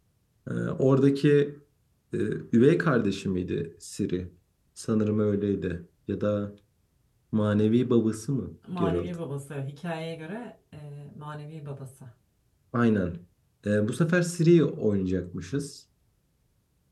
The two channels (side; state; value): both; identical; correlation 1.00